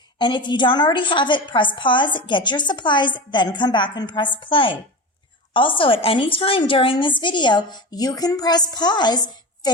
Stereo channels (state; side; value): normal; both; correlation 0.27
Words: And if you don't already have it, press pause, get your supplies, then come back and press play. Also, at any time during this video, you can press pause,